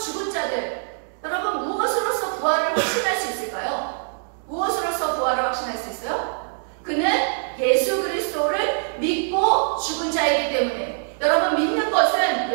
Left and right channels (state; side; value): silent; left; digital silence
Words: 자들, 여러분 무엇으로서 부활을 확신할 수 있을까요? 무엇으로서 부활을 확신할 수 있어요? 그는 예수 그리스도를 믿고 죽은 자이기 때문에, 여러분 믿는 것은